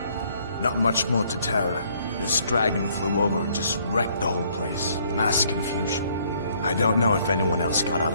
Not much more to tell. This dragon flew over and just wrecked the whole place. Mass confusion. I don't know if anyone else got out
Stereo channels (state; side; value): inverted; both; correlation -0.65